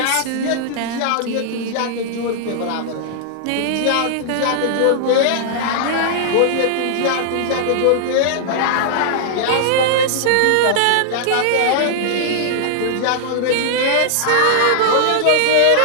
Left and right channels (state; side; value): different; both; correlation -0.01